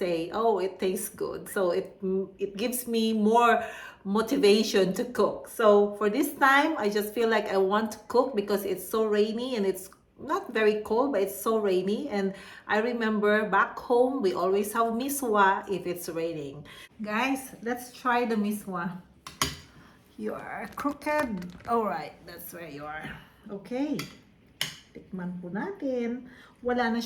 oh, it tastes good. So it gives me more motivation to cook. So for this time, I just feel like I want to cook because it's so rainy and it's not very cold, but it's so rainy. And I remember back home, we always have MISWA if it's raining. Guys, let's try the MISWA. You are crooked. Alright, that's where you are. Okay. Tikman po natin. Wala na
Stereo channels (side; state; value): both; identical; correlation 1.00